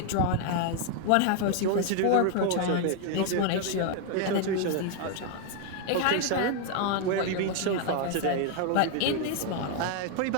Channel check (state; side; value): different; both; correlation 0.00